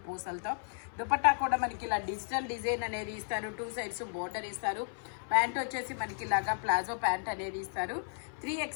పూసలతో. దుపట్టా కూడా మనకి ఇలా డిజిటల్ డిజైన్ అనేది ఇస్తారు. 2 సైడ్స్ బోర్డర్ ఇస్తారు. ప్యాంట్ వచ్చేసి మనకి ఇలాగా ప్లాజో ప్యాంట్ అనేది ఇస్తారు.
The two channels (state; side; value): silent; right; 55 dB below the other